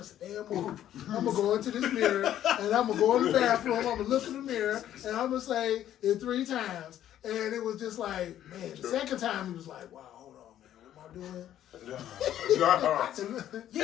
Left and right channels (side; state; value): right; quieter; 11.6 dB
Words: a damn movie. I'm gonna go into this mirror and I'm gonna go in the bathroom. I'm gonna look in the mirror and I'm gonna say it 3 times. And it was just like, man, the second time he was like, wow, hold on, man, what am I start doing. No.